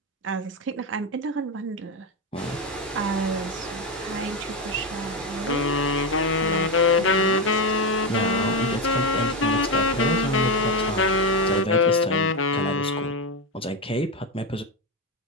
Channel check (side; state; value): both; normal; correlation 0.11